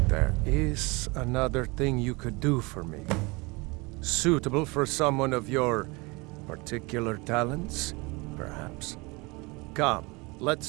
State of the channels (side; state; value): left; quieter; 26.2 dB